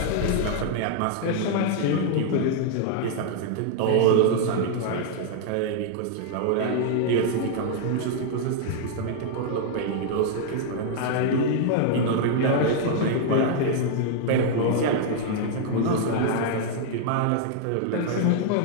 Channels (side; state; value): both; different; correlation 0.00